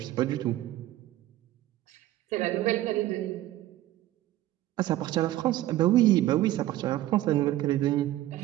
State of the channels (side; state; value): left; quieter; 14.8 dB